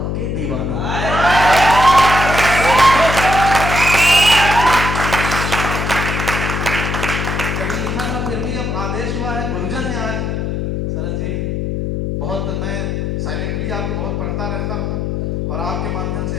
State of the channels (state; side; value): noise; left; hum, 2 dB below the sound